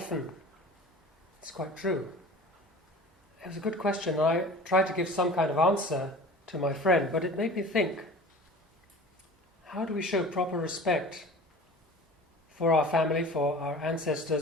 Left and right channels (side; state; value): both; normal; correlation 0.40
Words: It's quite true. It was a good question. I tried to give some kind of answer to my friend, but it made me think, how do we show proper respect for our family, for our